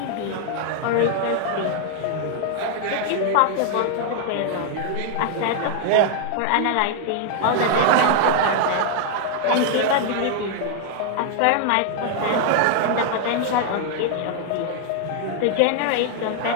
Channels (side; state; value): both; different; correlation 0.00